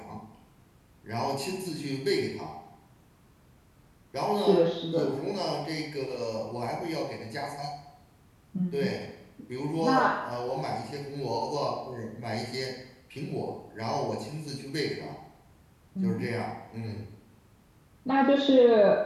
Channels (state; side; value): identical; both; correlation 1.00